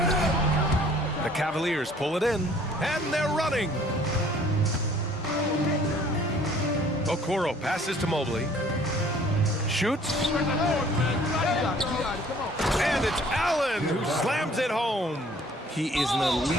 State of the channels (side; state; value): both; normal; correlation 0.55